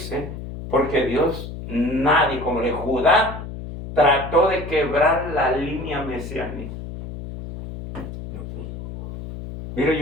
porque Dios, nadie, como el Judá, trató de quebrar la línea mesiánica. Mira,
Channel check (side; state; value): left; noise; hum, 10 dB below the sound